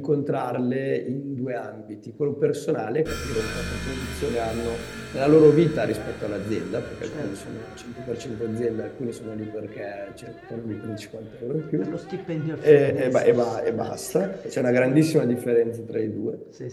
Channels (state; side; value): identical; both; correlation 1.00